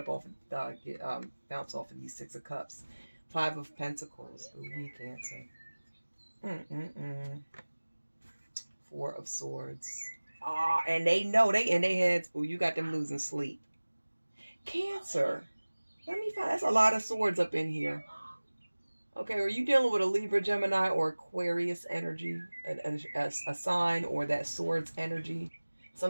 off, bounce off of these Six of Cups. Five of Pentacles. Ooh, we Cancer. Four of Swords. And they know, they in their heads, oh, you got them losing sleep. Cancer. Let me find, that's a lot of swords up in here. Okay, are you dealing with a Libra, Gemini, or Aquarius energy? A sign, or that swords energy?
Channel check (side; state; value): both; inverted; correlation -1.00